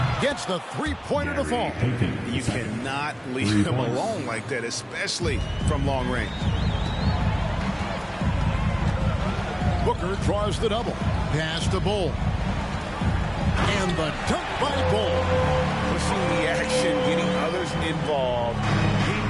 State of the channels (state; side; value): identical; both; correlation 1.00